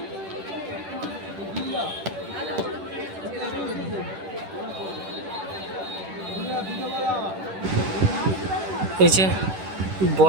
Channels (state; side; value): late; left; 10 ms